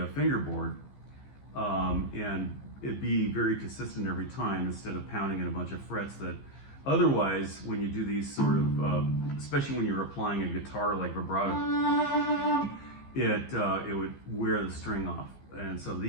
fingerboard, and it'd be very consistent every time instead of pounding in a bunch of frets that otherwise, when you do these sort of, especially when you're applying a guitar like vibrato, it would wear the string off. And so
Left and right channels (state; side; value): late; right; 15 ms